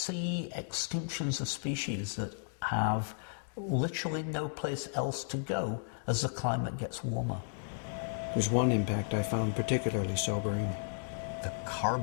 extinctions of species that have literally no place else to go as the climate gets warmer. There's one impact I found particularly sobering. The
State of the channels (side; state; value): right; silent; digital silence